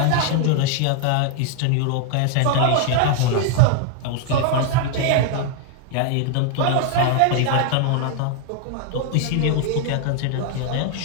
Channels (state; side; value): different; both; correlation 0.00